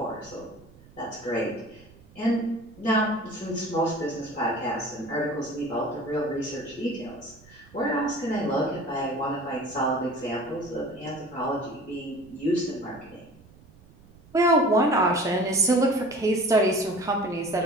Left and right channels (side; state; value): right; noise; rumble, 24 dB below the sound